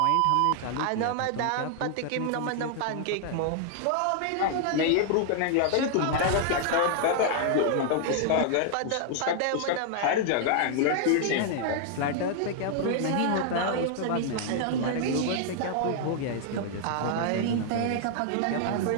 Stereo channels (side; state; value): both; different; correlation 0.00